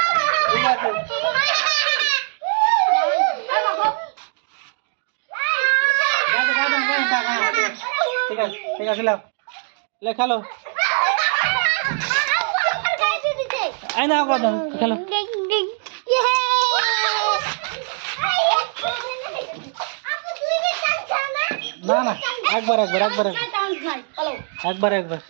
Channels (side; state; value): left; silent; 57 dB below the other